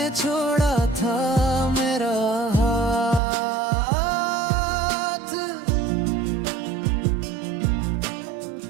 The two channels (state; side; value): drops out; left; at 3.2 s